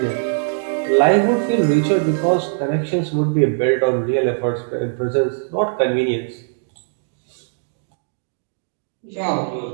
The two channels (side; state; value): left; silent; digital silence